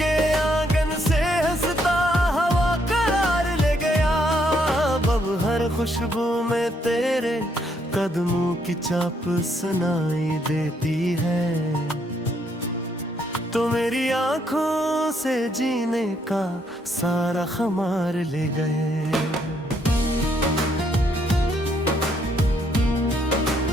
खुशबू में तेरे कदमों की चाप सुनाई देती है। तो मेरी आंखों से जीने का सारा खुमार ले गए।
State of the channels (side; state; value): both; normal; correlation 0.72